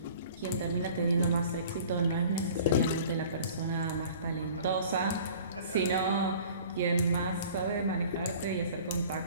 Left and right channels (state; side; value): inverted; both; correlation -0.47